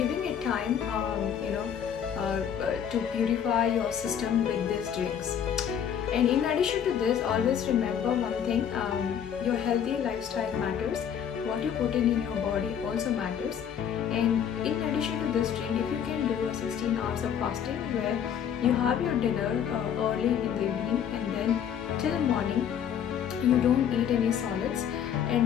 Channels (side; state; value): right; quieter; 8.6 dB